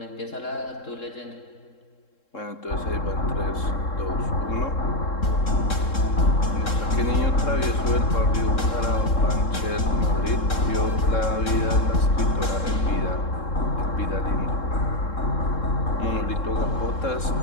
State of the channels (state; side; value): late; right; 3.7 ms